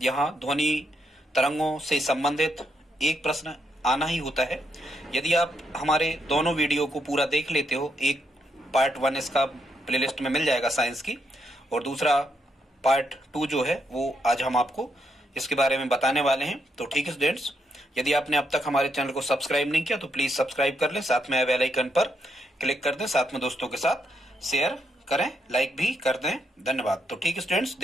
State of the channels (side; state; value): both; normal; correlation 0.79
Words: यहाँ ध्वनि तरंगों से संबंधित एक प्रश्न आना ही होता है। यदि आप हमारे दोनों वीडियो को पूरा देख लेते हो, एक पार्ट 1 इसका प्लेलिस्ट में मिल जाएगा साइंस की, और दूसरा पार्ट 2 जो है वो आज हम आपको इसके बारे में बताने वाले हैं। तो ठीक है स्टूडेंट्स, यदि आपने अब तक हमारे चैनल को सब्सक्राइब नहीं किया तो प्लीज सब्सक्राइब कर लें, साथ में बेल आइकन पर क्लिक कर दें, साथ में दोस्तों के साथ शेयर करें, लाइक भी कर दें। धन्यवाद। तो ठीक है स्टूडेंट्स,